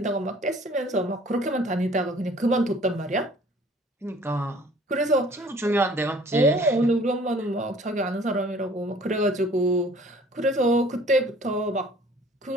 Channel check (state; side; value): normal; both; correlation 0.53